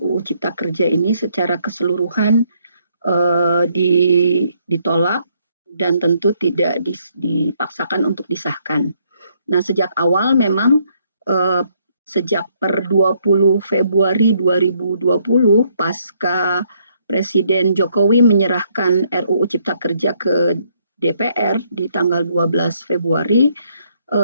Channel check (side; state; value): both; inverted; correlation -0.71